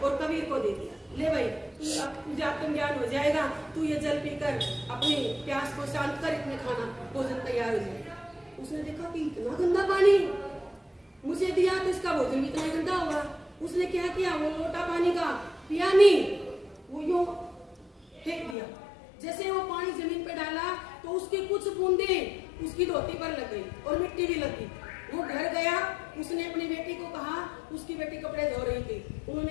और कबीर को दे दिया, ले भाई तुझे आत्मज्ञान हो जाएगा, तू ये जल पीकर अपनी प्यास को शांत कर, इतने खाना भोजन तैयार हो जाएगा। उसने देखा कि इतना गंदा पानी मुझे दिया तो इसका भोजन भी इतना गंदा होगा। उसने क्या किया, वो लोटा पानी का पिया नहीं, वो यूं फेंक दिया। जैसे वो पानी जमीन पे डाला तो उसकी कुछ बूंदे उसकी धोती पर लग गई और मिट्टी भी लगी। वो घर गया, उसने अपनी बेटी को कहा, उसकी बेटी कपड़े धो रही थी,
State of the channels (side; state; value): right; drops out; at 18.6 s